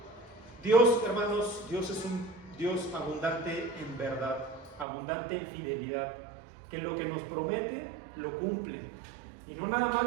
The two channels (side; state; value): left; drops out; at 4.9 s